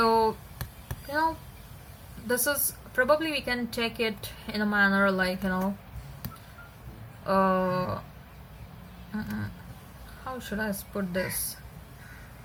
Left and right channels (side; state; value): both; identical; correlation 1.00